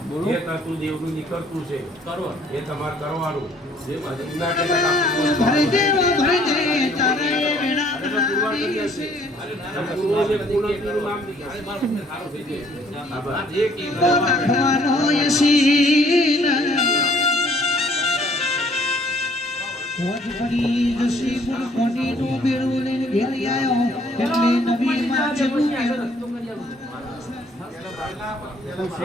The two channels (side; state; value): both; normal; correlation 0.61